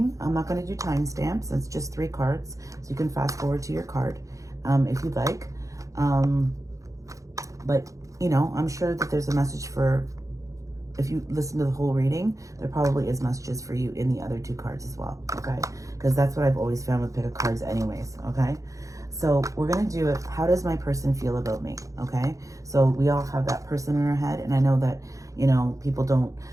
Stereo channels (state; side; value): late; left; 0.16 ms